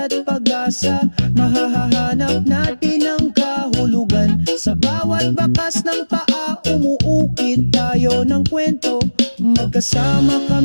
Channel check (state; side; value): inverted; both; correlation -1.00